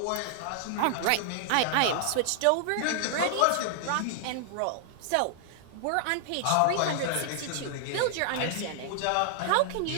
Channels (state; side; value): different; both; correlation -0.01